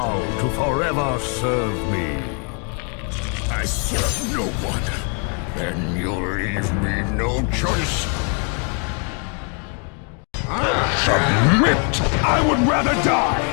to forever serve me. I serve no one. Then you leave me no choice. Submit! I would rather die!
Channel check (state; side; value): quieter; right; 39.1 dB